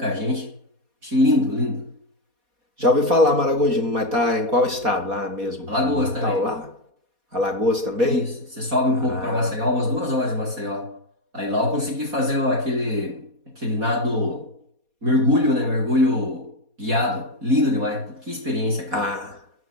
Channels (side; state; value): left; late; 4.2 ms